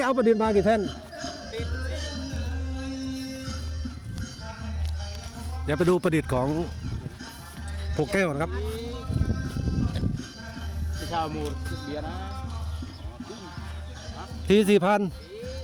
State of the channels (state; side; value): identical; both; correlation 1.00